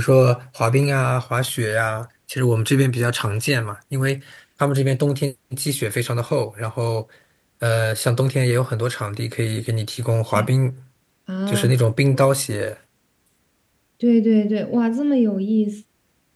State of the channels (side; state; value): both; identical; correlation 1.00